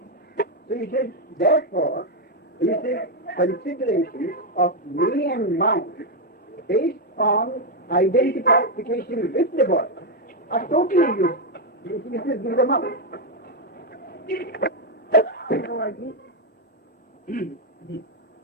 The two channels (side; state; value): both; normal; correlation 0.02